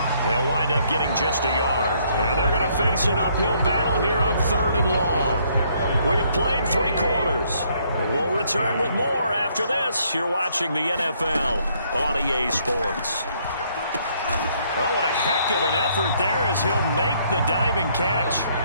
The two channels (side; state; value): both; inverted; correlation -0.68